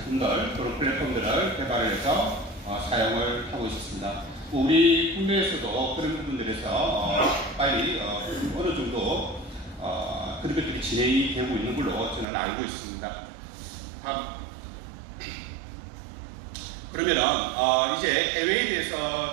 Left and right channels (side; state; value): left; drops out; at 12.2 s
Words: 그런 플랫폼들을 개발을 해서 사용을 하고 있습니다. 우리 국내에서도 그런 부분들에서 빨리 어느 정도 그런 것들이 진행이 되고 있는 걸로 저는 알고 있습니다. 그러면은 이제 해외에